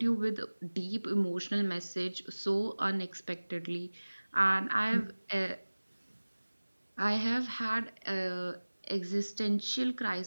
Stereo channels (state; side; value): inverted; both; correlation -1.00